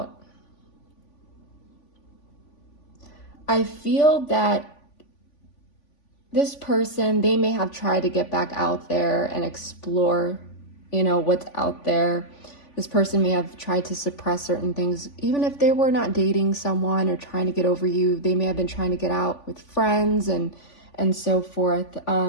I feel that this person, they may have tried to get back out there and explore, you know, what's out there. This person may have tried to suppress certain things. Even if they were not dating someone or trying to get over you, they may have been trying to get out with friends and so forth.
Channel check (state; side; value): late; right; 3.5 ms